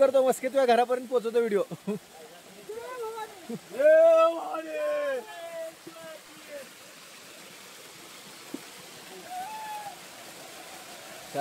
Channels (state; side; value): identical; both; correlation 1.00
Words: मस्के तुझ्या घरापर्यंत पोहोचवतो व्हिडिओ